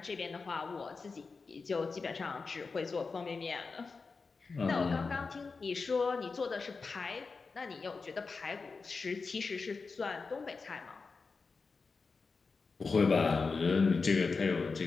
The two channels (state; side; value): quieter; right; 4.5 dB